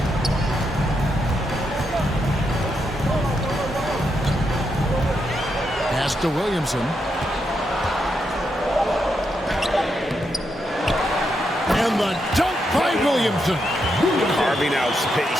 Pass to Williamson. And the dunk by Williamson. Carving out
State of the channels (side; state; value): both; normal; correlation 0.82